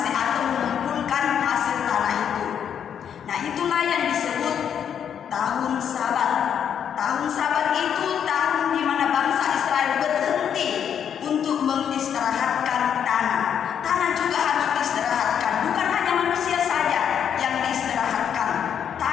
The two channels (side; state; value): right; quieter; 8.5 dB